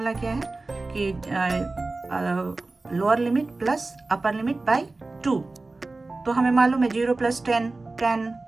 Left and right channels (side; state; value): left; quieter; 3.3 dB